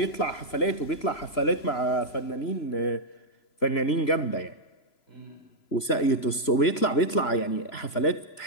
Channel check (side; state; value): right; late; 3.0 ms